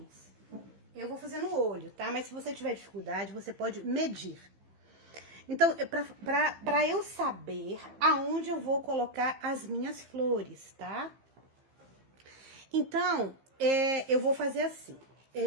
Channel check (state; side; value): late; left; 15 ms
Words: Eu vou fazer no olho, tá? Mas se você tiver dificuldade, você pode medir. Então, pra eu saber aonde eu vou colocar as minhas flores, tá? Então, eu vou fazer assim.